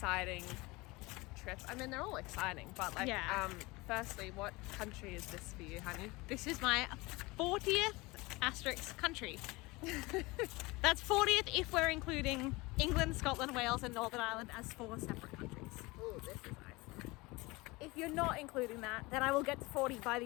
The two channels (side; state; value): right; quieter; 23.2 dB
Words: trip. I mean, they're all exciting, but like, firstly, what country is this for you, honey? This is my 40th asterisk country. That's 40th if we're including England, Scotland, Wales and Northern Ireland as 4 separate countries. Oh, this is nice. If you're not including that, then I will get to 40 by